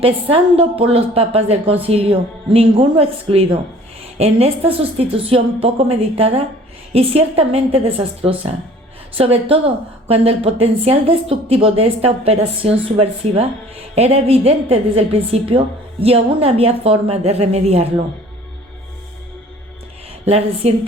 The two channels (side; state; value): both; normal; correlation 0.51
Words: por los papas del concilio, ninguno excluido, en esta sustitución poco meditada y ciertamente desastrosa? Sobre todo cuando el potencial destructivo de esta operación subversiva era evidente desde el principio y aún había forma de remediarlo. La